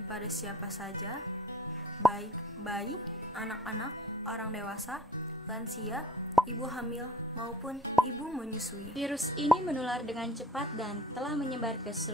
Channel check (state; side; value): normal; both; correlation 0.50